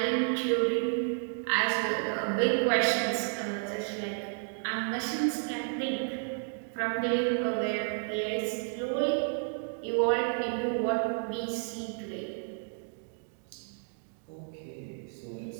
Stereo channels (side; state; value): left; silent; 57 dB below the other